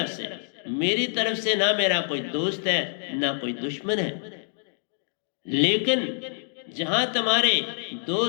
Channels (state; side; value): silent; right; digital silence